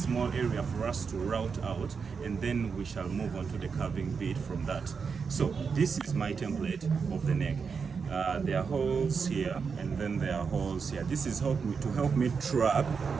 area for us to route out, and then we shall move on to the carving bit from that. So this is my template of the neck. There are holes here, and then there are holes here. This is to help me track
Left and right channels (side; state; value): left; quieter; 5.6 dB